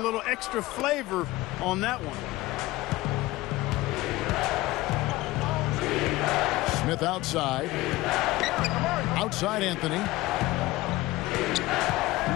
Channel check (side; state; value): right; quieter; 18.6 dB